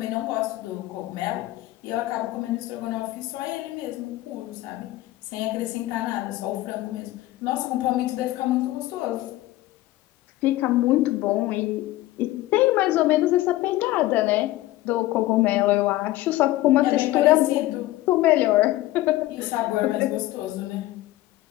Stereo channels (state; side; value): quieter; right; 16.6 dB